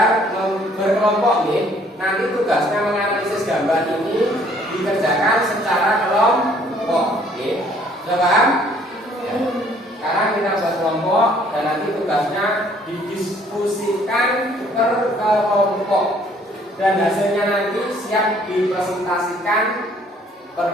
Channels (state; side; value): normal; both; correlation 0.60